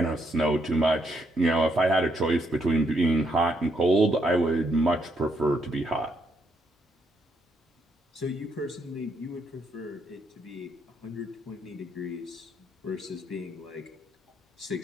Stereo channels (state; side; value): normal; both; correlation 0.74